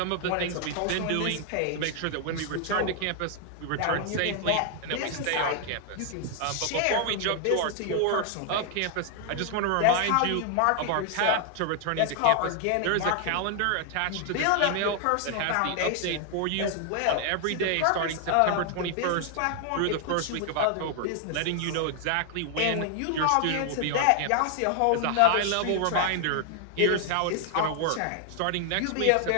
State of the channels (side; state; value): both; different; correlation 0.00